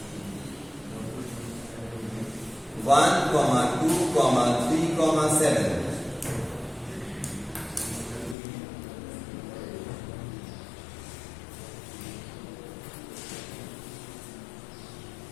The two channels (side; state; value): right; drops out; at 8.3 s